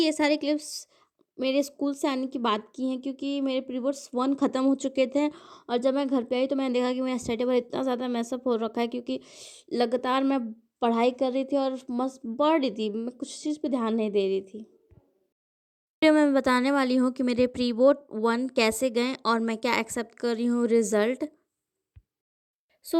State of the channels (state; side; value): identical; both; correlation 1.00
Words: ये सारे clips मेरे school से आने की बात की हैं क्योंकि मेरे प्री बोर्ड्स 1 ख़त्म हो चुके थे और जब मैं घर पे आई तो मैंने देखा कि मेरा स्टडी टेबल इतना ज़्यादा मैसअप हो रखा है क्योंकि लगातार मैं पढ़ाई कर रही थी और मस्त पढ़ रही थी, मैं कुछ चीज़ पे ध्यान नहीं दे रही थी। वीडियो में बताने वाली हूँ कि मेरे प्री बोर्ड 1 कैसे गए और मैं क्या एक्सेप्ट कर रही हूँ रिज़ल्ट।